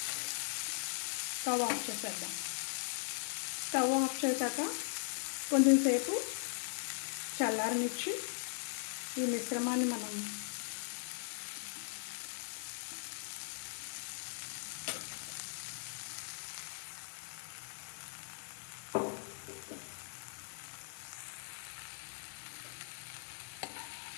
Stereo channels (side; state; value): right; silent; digital silence